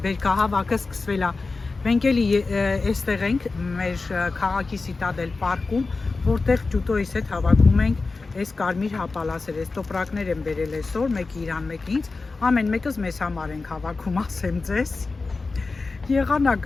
բերքահավաքը սկսվել է։ Մենք էլի այստեղ ենք մեր քաղաքի Սիտադել պարկում, որտեղ ջուտոյիս հետ հավաքում ենք այս կարմիր հապալասերը, այս տոպրակներ են բերել այսօր, մեկը իրան, մեկը ինձ, ամեն մեկս մեզ համար ենք հավաքում, ասեմ ձեզ։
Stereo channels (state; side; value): quieter; right; 3.9 dB